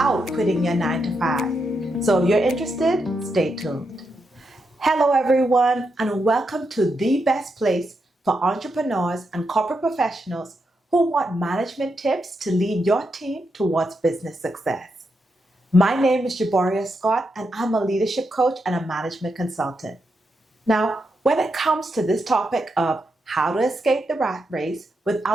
quitting your 9 to 5. So if you're interested, stay tuned. Hello everyone, and welcome to the best place for entrepreneurs and corporate professionals who want management tips to lead your team towards business success. My name is Jaboria Scott, and I'm a leadership coach and a management consultant. Now, when it comes to this topic of how to escape the rat race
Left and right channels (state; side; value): normal; both; correlation 0.83